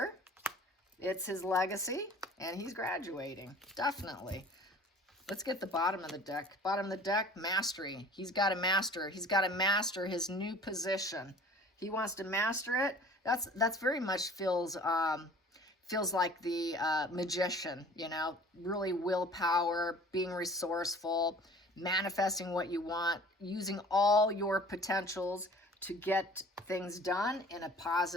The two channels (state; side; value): normal; both; correlation 0.47